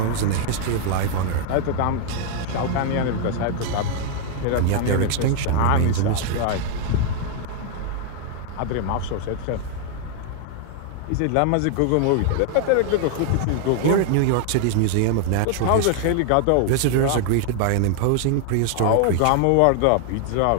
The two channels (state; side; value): different; both; correlation 0.00